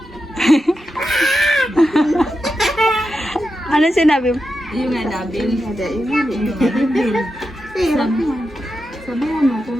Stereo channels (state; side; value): normal; both; correlation 0.89